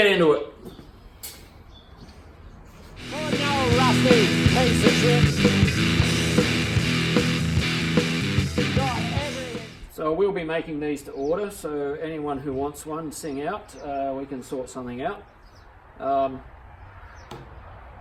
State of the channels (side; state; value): both; identical; correlation 1.00